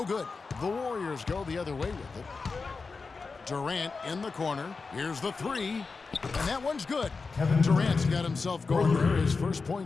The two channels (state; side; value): quieter; right; 4.4 dB